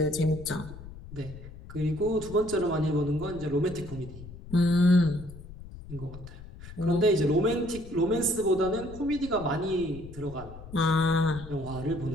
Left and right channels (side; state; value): left; noise; rumble, 15 dB below the sound